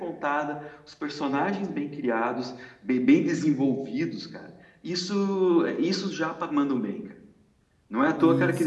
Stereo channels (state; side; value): identical; both; correlation 1.00